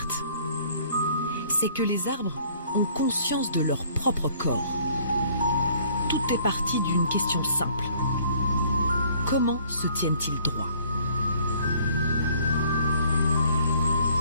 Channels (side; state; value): both; inverted; correlation -0.58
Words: c'est que les arbres ont conscience de leur propre corps. Tout est parti d'une question simple. Comment se tiennent-ils droit?